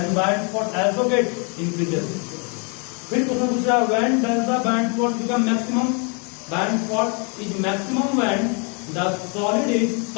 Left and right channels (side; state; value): right; quieter; 35.7 dB